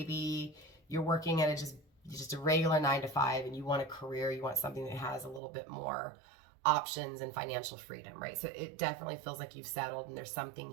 you're working at just a regular 9-to-5, and you want a career, you want something that has a little bit more options and financial freedom, right? So it definitely feels like you've settled, and there's something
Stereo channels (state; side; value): drops out; left; at 5.4 s